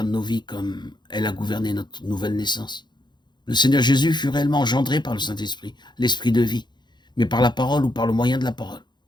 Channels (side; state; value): right; late; 0.21 ms